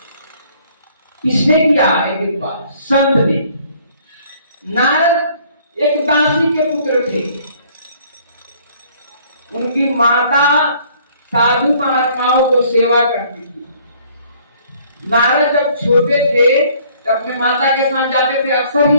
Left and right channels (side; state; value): both; inverted; correlation -0.59